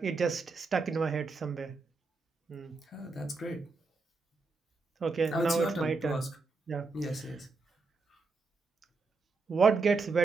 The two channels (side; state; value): left; quieter; 4.0 dB